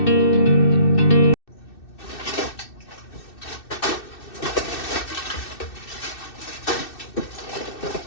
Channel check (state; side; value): late; right; 2.6 ms